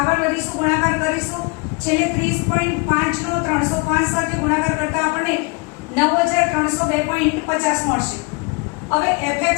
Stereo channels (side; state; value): right; quieter; 31.3 dB